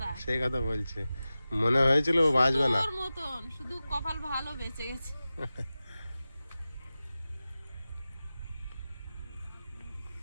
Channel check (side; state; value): both; inverted; correlation -0.95